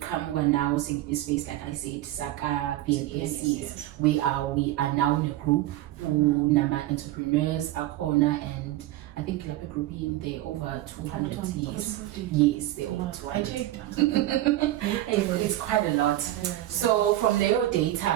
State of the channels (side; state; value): left; quieter; 15.3 dB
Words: now in space, like I said, Saka BNACs. We are now in a group who number entrepreneurs are corner, and I think like a group in there over 200 years. Yes, they're over 200. It's quite a lot. So from their